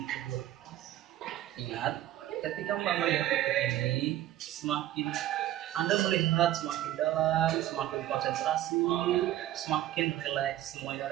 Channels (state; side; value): quieter; left; 13.6 dB